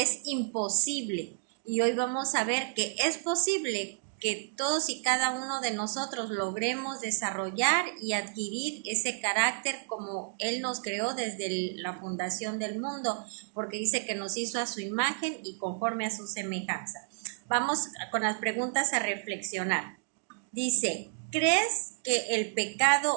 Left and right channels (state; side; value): silent; left; digital silence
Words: imposible. Y hoy vamos a ver que es posible que todos y cada uno de nosotros logremos desarrollar y adquirir ese carácter como Él nos creó desde la fundación del mundo, porque dice que nos hizo a su imagen y conforme a su semejanza. Vamos con las preguntas a reflexionar. Dice, ¿crees que el